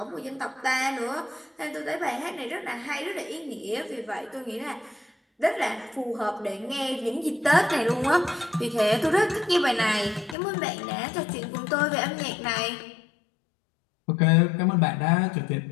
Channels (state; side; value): drops out; right; at 10.4 s